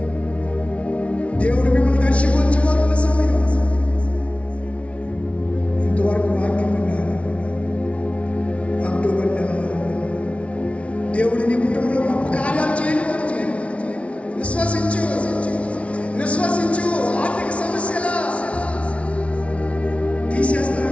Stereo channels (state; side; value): late; right; 0.063 ms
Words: దేవుడు మిమ్మల్ని దర్శించబోతున్న సమయం. ఇంతవరకు వాక్యం విన్నారు. అక్టోబర్ నెలలో దేవుడు నీ కుటుంబంలో గొప్ప కార్యాలు చేయబోతు. విశ్వసించు. ఆర్థిక సమస్యల తీసేస్తాడు.